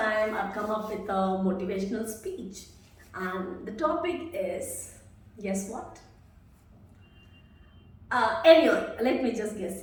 I've come up with a motivational speech and the topic is, guess what? Anyway, let me just guess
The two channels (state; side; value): identical; both; correlation 1.00